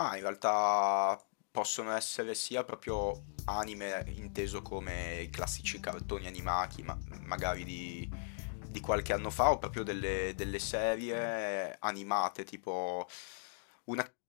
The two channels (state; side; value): silent; right; digital silence